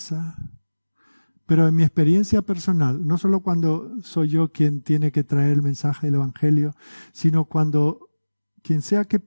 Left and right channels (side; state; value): both; inverted; correlation -1.00